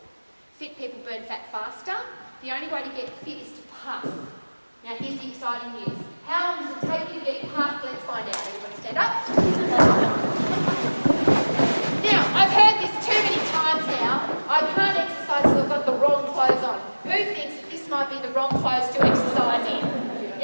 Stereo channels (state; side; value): inverted; both; correlation -1.00